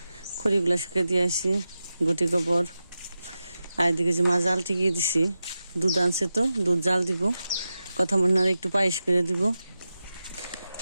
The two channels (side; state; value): both; inverted; correlation -0.92